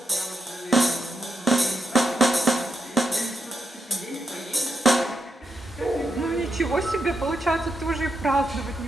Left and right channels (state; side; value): normal; both; correlation 0.83